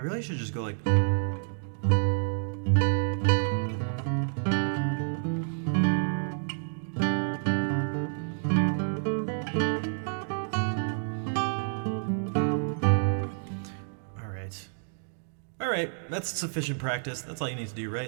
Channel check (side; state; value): left; silent; digital silence